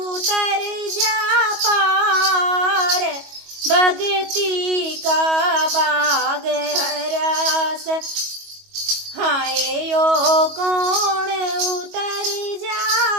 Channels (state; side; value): late; left; 22 ms